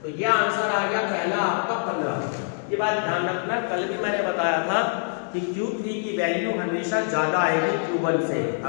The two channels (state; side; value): silent; right; digital silence